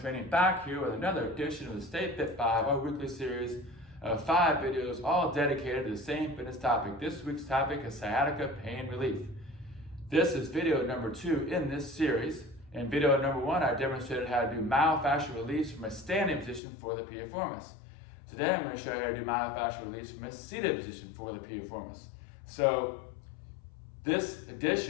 back here with another edition of the Stay Fit 5, our weekly series of 5 videos all dedicated to the same fitness topic. This week's topic is sciatica pain relief. This is video number 2 in this series. In video number 1, I demonstrated how to do myofascial release from a standing position for the piriformis. Today I'm going to show you how to do myofascial release from a seated position for the piriformis. So this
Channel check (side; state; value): right; drops out; at 16.6 s